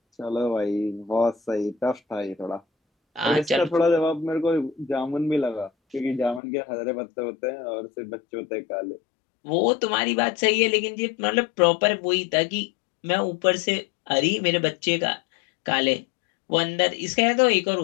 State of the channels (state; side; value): drops out; right; at 6.4 s